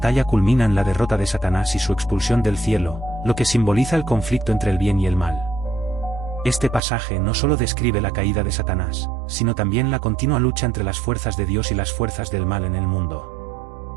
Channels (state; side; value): drops out; left; at 6.8 s